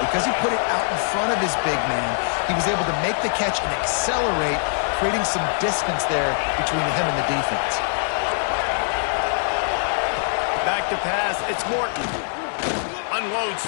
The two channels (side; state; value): right; silent; digital silence